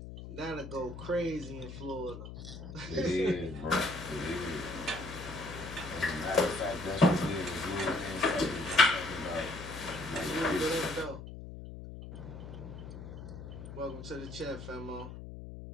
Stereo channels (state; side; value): noise; left; hum, 11 dB below the sound